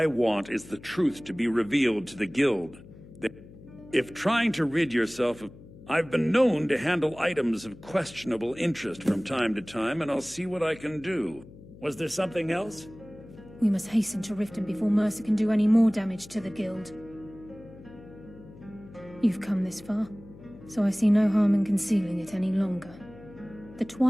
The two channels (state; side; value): noise; left; hum, 19 dB below the sound